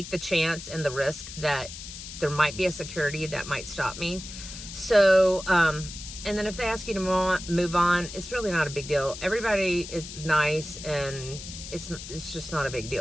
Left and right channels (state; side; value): noise; left; hiss, 11 dB below the sound